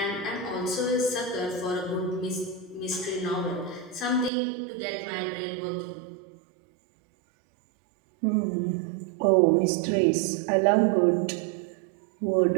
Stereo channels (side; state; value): left; drops out; at 4.3 s